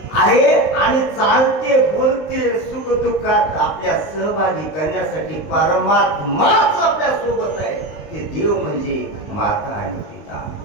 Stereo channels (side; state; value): right; late; 19 ms